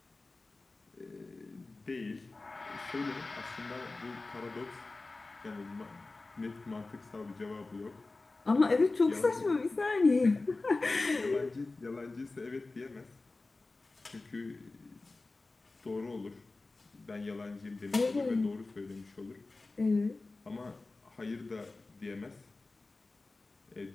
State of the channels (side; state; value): right; quieter; 3.4 dB